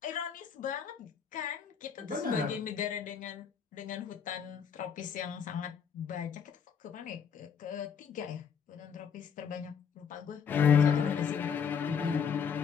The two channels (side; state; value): right; quieter; 7.1 dB